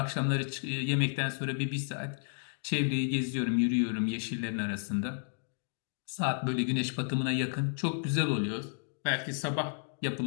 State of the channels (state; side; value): silent; right; digital silence